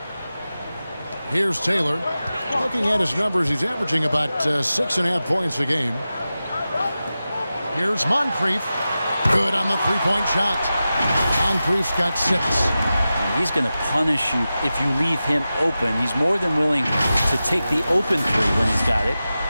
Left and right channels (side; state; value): both; inverted; correlation -0.94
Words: Here's Taylor. Looking at his numbers, he's averaging about 6.5 points a game. Here's Moncrief. Good on the three-point shot. Moncrief's got 6. He's going to punish you if you leave him open. He's more than willing to take the open three when he's got it.